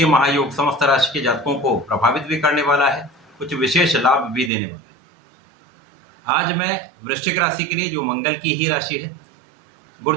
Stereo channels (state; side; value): drops out; left; at 4.5 s